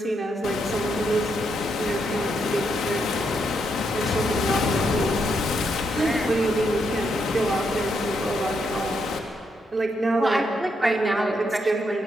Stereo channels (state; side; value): normal; both; correlation 0.79